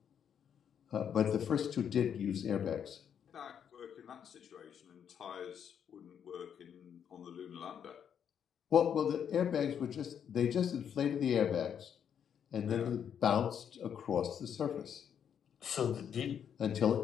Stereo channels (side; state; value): right; quieter; 8.3 dB